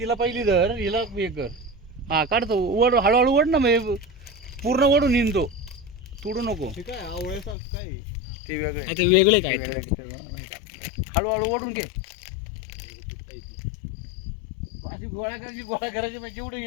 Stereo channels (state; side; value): drops out; right; at 7.6 s